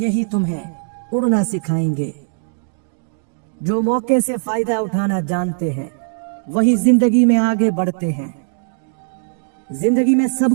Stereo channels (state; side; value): silent; left; digital silence